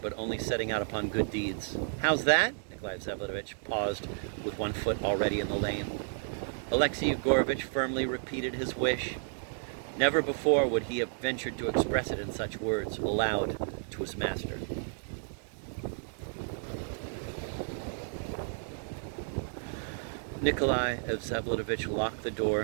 only setting out upon good deeds. How's that? Nikolai Vsevolatovich paused with one foot already in the lane. Alexei Yegorovitch firmly repeated his wish. Never before would he have ventured to express it in such words, aloud to his master. Nikolai Vsevolatovich locked the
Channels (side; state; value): left; silent; digital silence